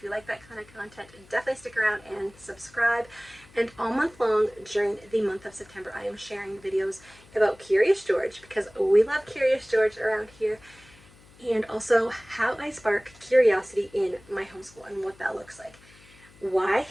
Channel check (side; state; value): left; noise; hum, 25 dB below the sound